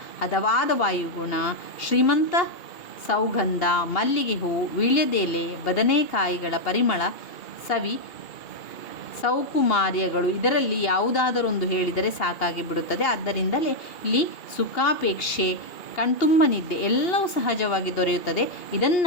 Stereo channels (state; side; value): late; right; 2.8 ms